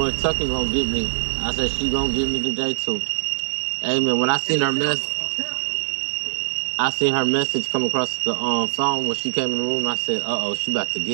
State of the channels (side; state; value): left; silent; digital silence